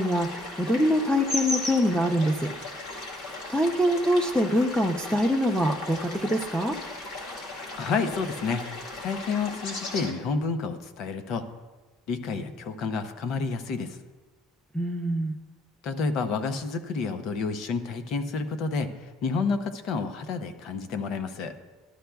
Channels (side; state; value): both; normal; correlation 0.69